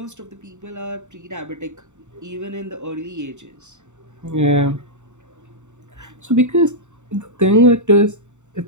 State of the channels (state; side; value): late; left; 0.84 ms